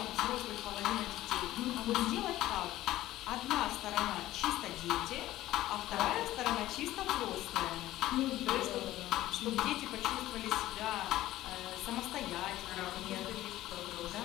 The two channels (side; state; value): right; quieter; 15.2 dB